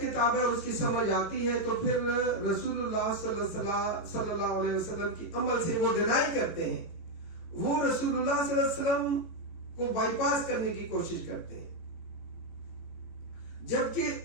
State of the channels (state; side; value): late; right; 18 ms